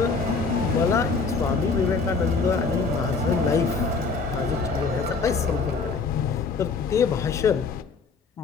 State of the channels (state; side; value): quieter; right; 4.6 dB